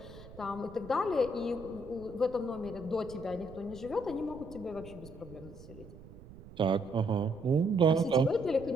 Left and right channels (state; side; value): noise; right; rumble, 17 dB below the sound